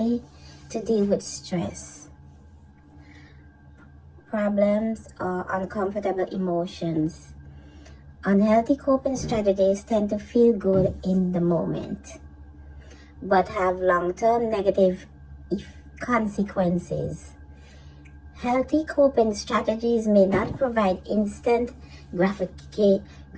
to deal with stress, problems, or uncomfortable emotions. Unhealthy coping strategies tend to feel good in the moment, but have long-term negative consequences. Healthy coping strategies may not provide instant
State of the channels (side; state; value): both; identical; correlation 1.00